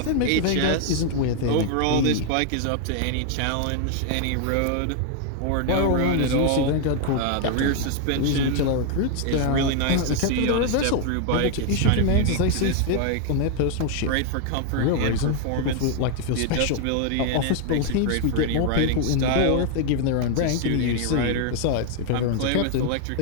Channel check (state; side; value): different; both; correlation 0.00